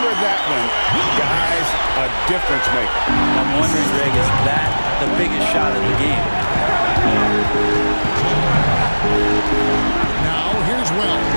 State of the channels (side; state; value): both; inverted; correlation -1.00